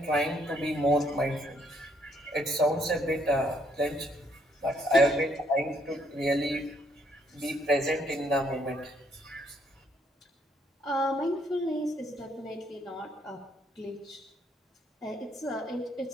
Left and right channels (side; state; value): both; normal; correlation 0.70